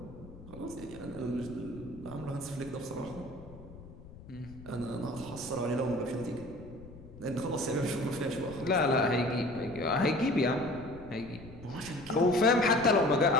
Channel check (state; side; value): noise; left; rumble, 17 dB below the sound